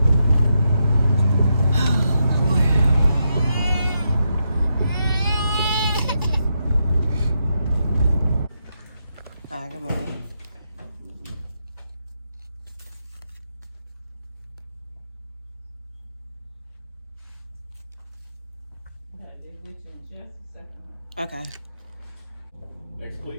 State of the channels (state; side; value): inverted; both; correlation -0.83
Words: Good morning. Okay. Next,